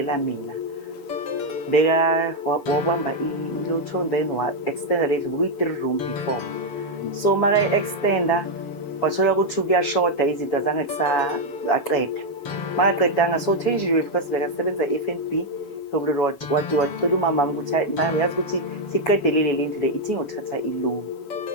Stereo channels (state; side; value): late; right; 7.1 ms